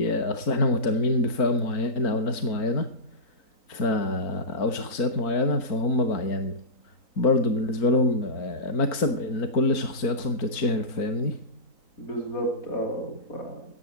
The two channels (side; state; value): right; late; 3.9 ms